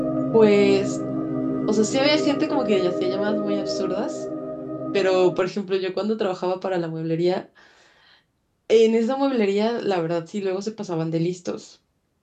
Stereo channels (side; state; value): both; identical; correlation 1.00